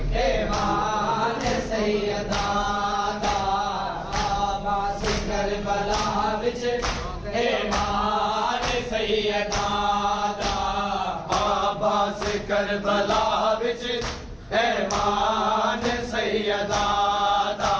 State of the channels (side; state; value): both; identical; correlation 1.00